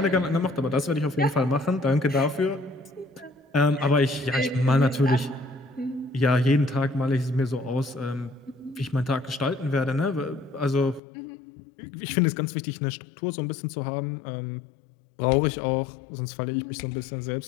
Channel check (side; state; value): right; drops out; at 11.0 s